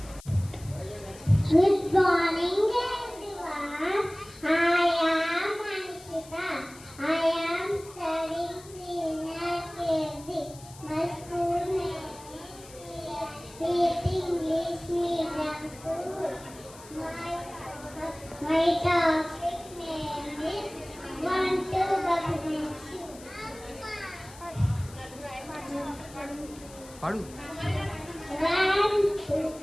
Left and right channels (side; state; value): left; noise; hiss, 20 dB below the sound